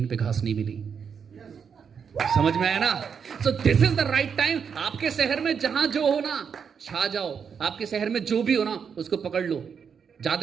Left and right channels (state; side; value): quieter; left; 6.8 dB